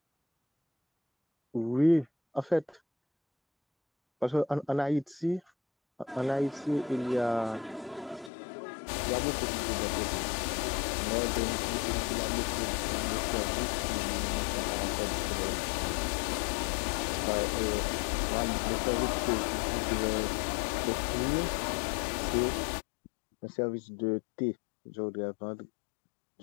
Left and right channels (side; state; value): right; drops out; at 8.3 s